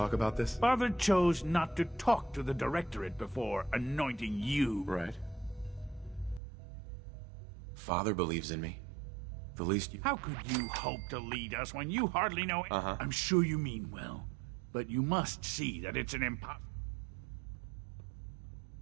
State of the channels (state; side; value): drops out; left; at 6.4 s